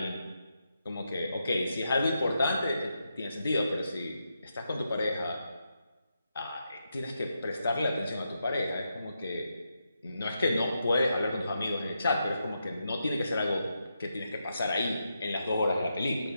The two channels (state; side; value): inverted; both; correlation -0.85